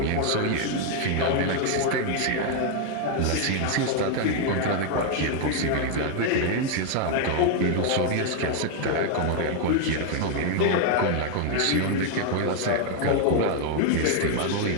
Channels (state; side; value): different; both; correlation 0.00